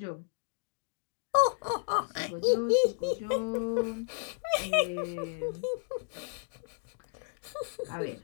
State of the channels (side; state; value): right; silent; digital silence